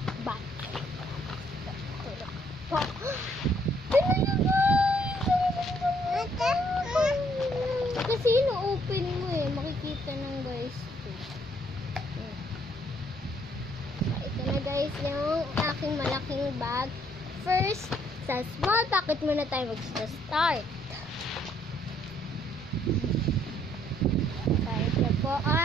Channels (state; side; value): normal; both; correlation 0.67